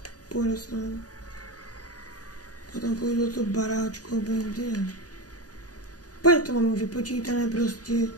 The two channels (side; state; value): right; late; 0.68 ms